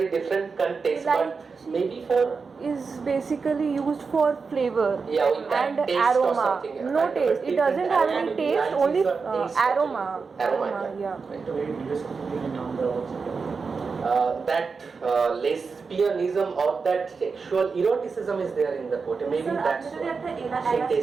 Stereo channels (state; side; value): quieter; left; 4.9 dB